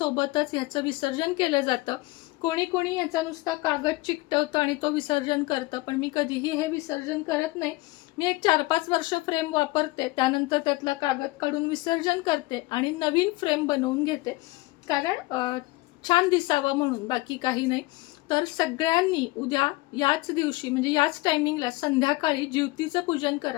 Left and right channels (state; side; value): quieter; right; 21.3 dB